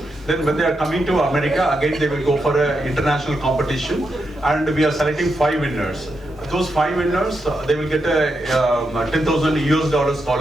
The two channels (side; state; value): both; normal; correlation 0.84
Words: Then when they are coming to America, again they will go for an international competition. And we are selecting 5 winners. Those 5 winners, they will get a $10,000